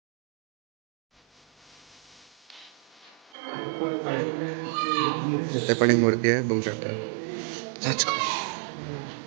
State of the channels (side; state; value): left; drops out; at 3.3 s